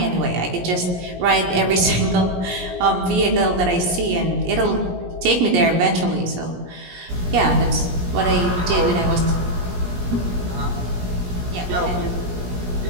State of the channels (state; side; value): late; left; 17 ms